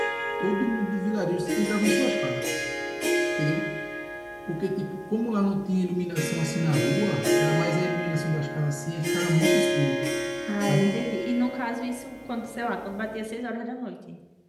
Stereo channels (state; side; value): identical; both; correlation 1.00